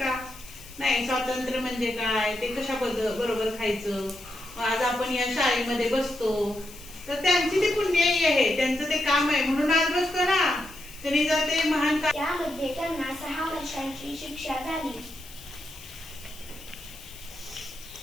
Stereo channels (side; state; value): left; noise; hiss, 18 dB below the sound